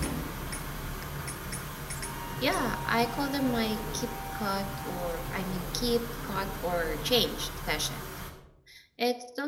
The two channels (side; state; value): both; identical; correlation 1.00